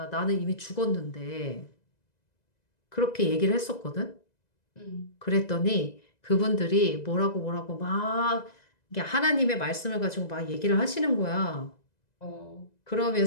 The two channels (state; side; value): late; right; 2.0 ms